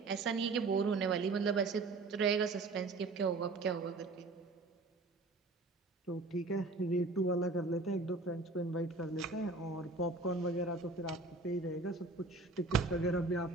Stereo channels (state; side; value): quieter; left; 3.4 dB